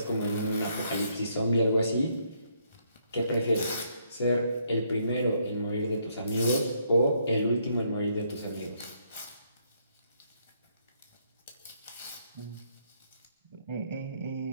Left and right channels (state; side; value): inverted; both; correlation -0.72